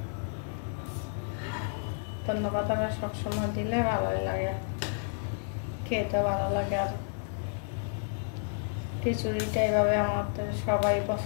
ধন্যবাদ সবসময় দিলে ভালোই লাগে, খেতে ভালো লাগে। আর খিচুড়িটা এইভাবে আমাদের সবাই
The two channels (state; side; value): silent; right; 57 dB below the other